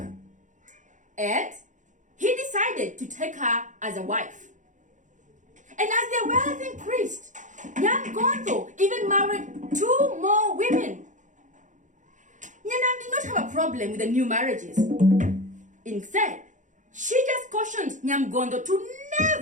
And he decided to take her as a wife. And as their wealth increased, Nyamgontho even married 2 more women. Nyanam did not have a problem with the new marriages. Instead, she just cautioned Nyamgontho to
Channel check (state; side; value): late; left; 0.36 ms